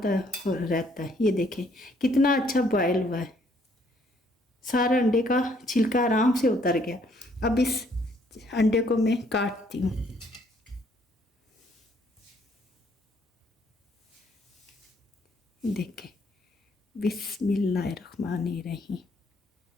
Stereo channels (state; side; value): normal; both; correlation 0.66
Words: रहता है। ये देखें कितना अच्छा बॉयल हुआ है, सारा अंडे का छिलका आराम से उतर गया। अब इस अंडे को मैं काटती हूँ। देखें बिस्मिल्लाहिर्रहमानिर्रहीम।